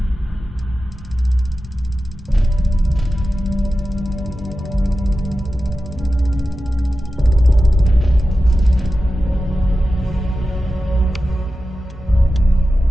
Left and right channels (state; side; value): normal; both; correlation 0.93